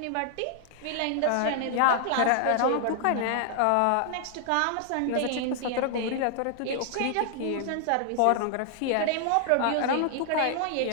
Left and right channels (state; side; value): different; both; correlation 0.00